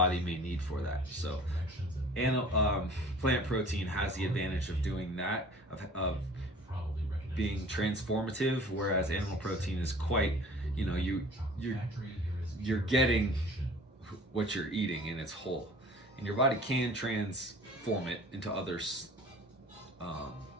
may need for that. So plant protein has the advantage of doing that, of being transformative, whereas animal protein is quite, you're getting what you're eating in its whole, and your body can transform it into other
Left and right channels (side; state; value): both; normal; correlation 0.46